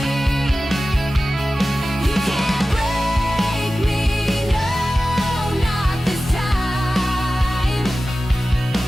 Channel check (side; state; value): both; normal; correlation 0.95